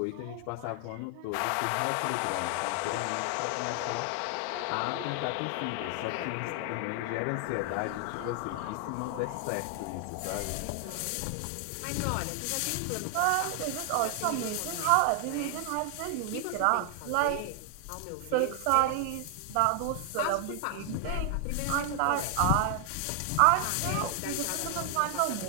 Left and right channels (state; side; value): different; both; correlation 0.00